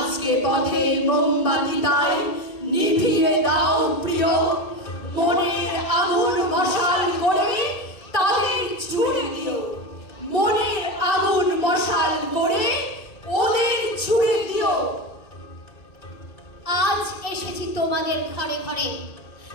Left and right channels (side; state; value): right; late; 1.9 ms